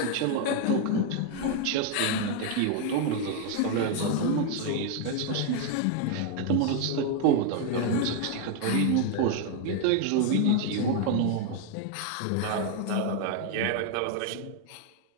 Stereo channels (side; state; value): both; different; correlation 0.00